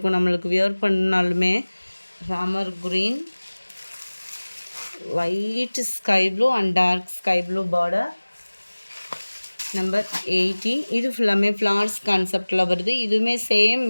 நம்மளுக்கு வியர் பண்ணாலுமே. Ramar green, light sky blue and dark sky blue border. Number 80 இது ஃபுல்லாமே ஃப்ளார்ஸ் கான்செப்டில் வருது. இதுவுமே same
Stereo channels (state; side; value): inverted; both; correlation -1.00